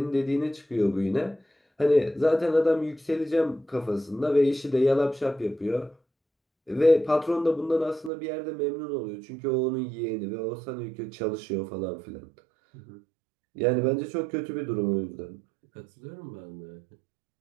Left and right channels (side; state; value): left; drops out; at 8.1 s